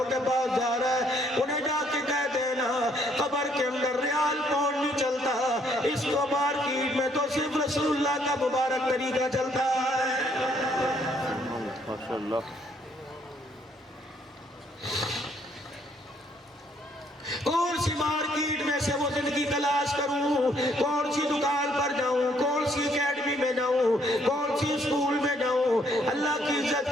کے پاس جا رہا ہے، انہیں جا کے کہہ دینا قبر کے اندر ریال پاؤنڈ نہیں چلتا، اس کو مارکیٹ میں تو صرف رسول اللہ کا مبارک طریقہ چلتا ہے۔ ماشاءاللہ۔ کون سی مارکیٹ میں سے وہ زندگی تلاش کروں، کون سی دکان پر جاؤں، کون سی اکیڈمی میں جاؤں، کون سی اسکول میں جاؤں؟ اللہ کی عزت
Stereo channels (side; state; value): both; normal; correlation 0.67